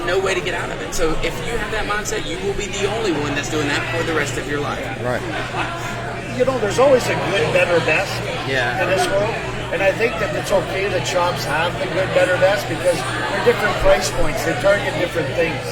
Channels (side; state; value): both; identical; correlation 1.00